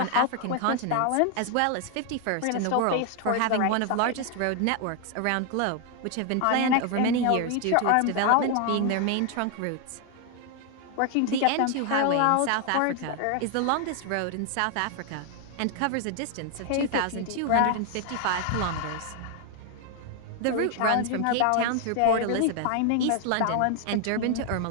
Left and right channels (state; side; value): different; both; correlation 0.00